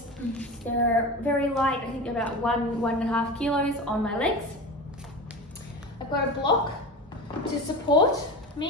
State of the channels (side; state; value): both; normal; correlation 0.28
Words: They're very light, I think about 1.5 kilos on my legs. I've got a block to support